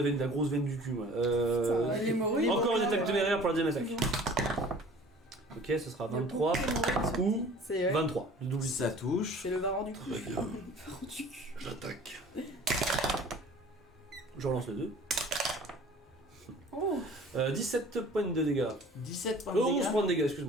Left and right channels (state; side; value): normal; both; correlation 0.47